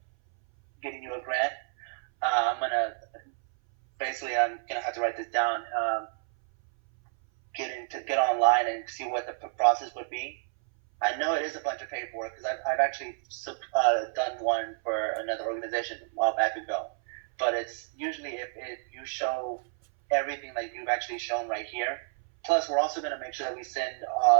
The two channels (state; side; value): silent; left; 58 dB below the other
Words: getting you a grant. I'm gonna have to write this down. Get online and see what the process would be. I know it is a bunch of paperwork because I've actually done one for another organization a while back ago. But it's usually if you show everything that you've actually shown right here. Plus, we're also going to make sure that we send